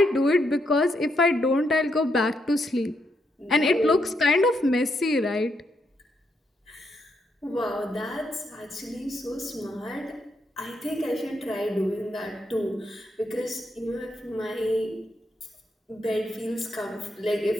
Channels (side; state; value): both; normal; correlation 0.79